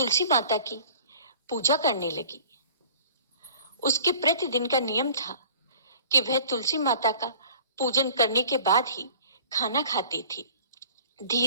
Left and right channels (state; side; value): inverted; both; correlation -0.47